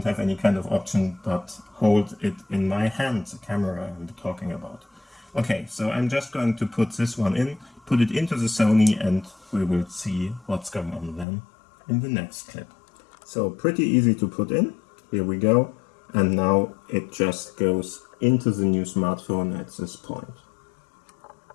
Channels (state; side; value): drops out; right; at 11.2 s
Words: have any kind of option but hold it in my hand, the camera I'm talking about. Okay, so I'm just going to put this one in, put it into the Sony, and we will see what's going on then in the next clip. So pretty easy to put in. Here we go. And now it just goes into the new smartphone at this point.